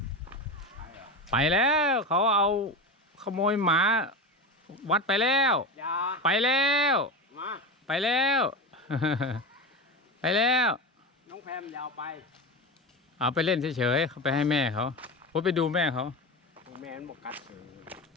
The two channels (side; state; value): both; normal; correlation 0.22